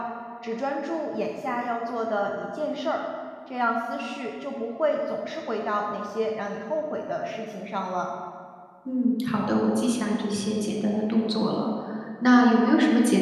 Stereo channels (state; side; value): identical; both; correlation 1.00